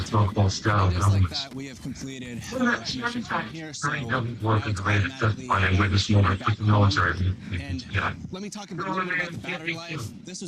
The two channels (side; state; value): both; identical; correlation 1.00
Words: Just like that, we have completed our mission from here. So and let me talk a little bit about the battery life. This